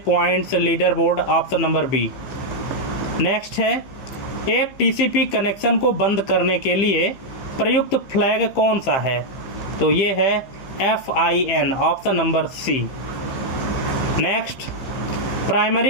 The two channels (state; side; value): late; right; 15 ms